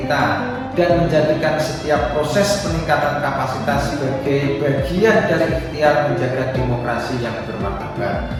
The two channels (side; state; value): both; identical; correlation 1.00